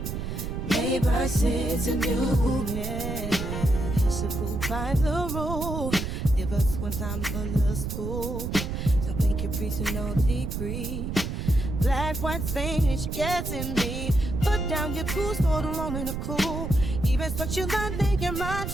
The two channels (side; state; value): right; noise; rumble, 4 dB below the sound